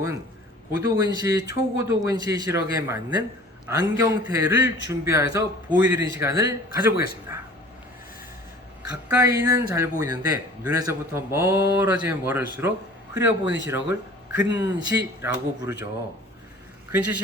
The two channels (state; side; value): normal; both; correlation 0.46